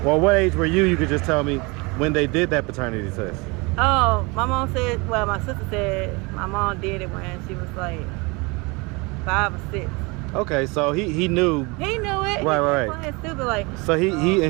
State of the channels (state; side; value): quieter; left; 27.0 dB